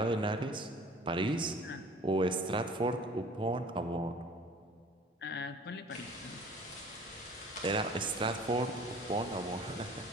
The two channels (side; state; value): both; normal; correlation 0.47